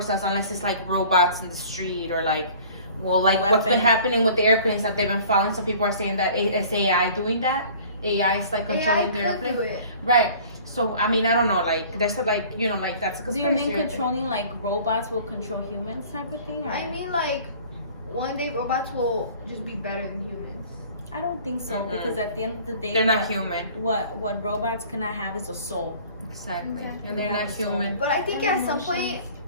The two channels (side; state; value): both; inverted; correlation -0.48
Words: us unless it's like robots in the street or like, well, like what's been happening with the airplanes that they've been following. Some people are saying that it's AI doing that. AI is like controlling the airplane. do it. Right. So I mean, I don't know. Like there's a, like, you know, like that's a Do conspiracy. you mean right there. controlling like robots will control humans type of thing? Or? I mean, like, one day robots will just be better than humans. I don't think so because at the end of the day, They're not human. What robots cannot have is a soul. Exactly. Exactly. And they're Yeah, not so- human. But I think And at some point emotions.